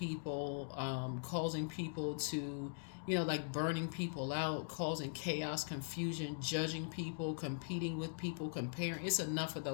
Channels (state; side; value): silent; right; digital silence